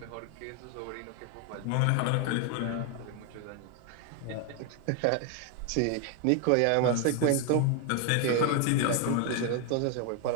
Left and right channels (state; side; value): different; both; correlation 0.01